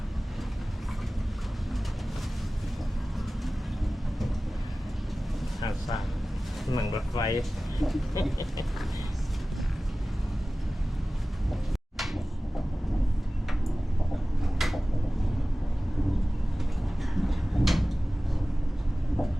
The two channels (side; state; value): both; normal; correlation 0.97